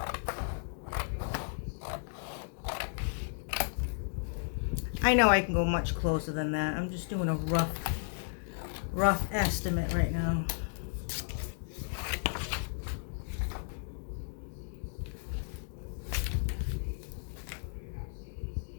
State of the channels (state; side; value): silent; right; digital silence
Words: I know I can go much closer than that. I'm just doing a rough estimate right now.